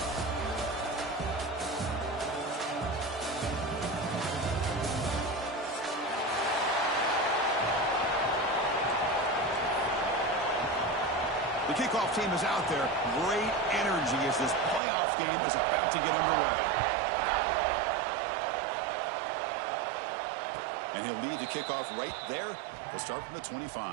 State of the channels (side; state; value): left; drops out; at 14.8 s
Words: The kickoff team is out there. Great energy as this playoff game is about to get underway. And he'll lead the kickoff right there. He'll start from the